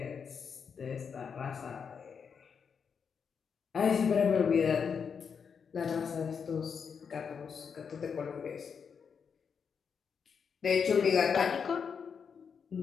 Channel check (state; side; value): quieter; right; 6.4 dB